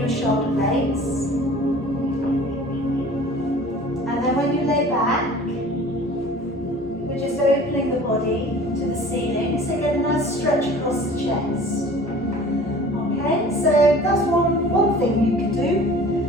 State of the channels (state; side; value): normal; both; correlation 0.45